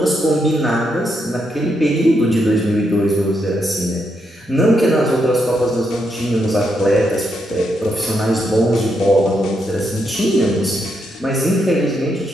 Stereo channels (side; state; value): both; normal; correlation 0.80